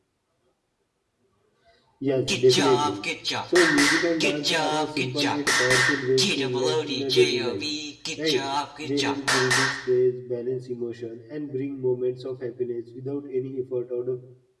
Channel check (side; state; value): both; identical; correlation 1.00